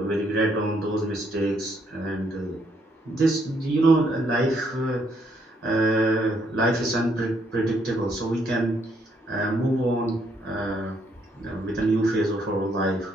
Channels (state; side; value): normal; both; correlation 0.71